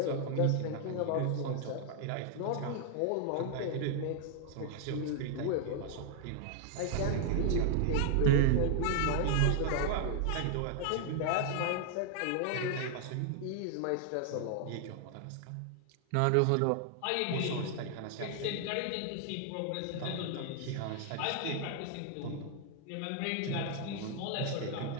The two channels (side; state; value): both; different; correlation 0.00